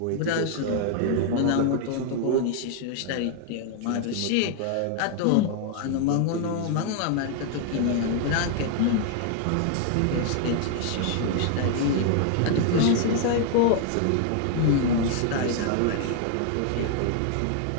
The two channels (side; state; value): both; different; correlation 0.00